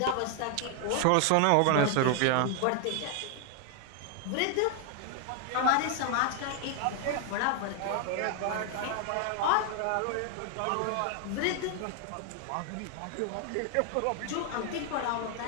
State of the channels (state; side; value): different; both; correlation 0.00